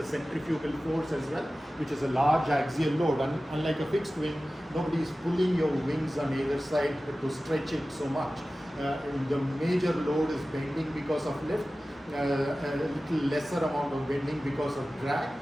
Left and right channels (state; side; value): normal; both; correlation 0.96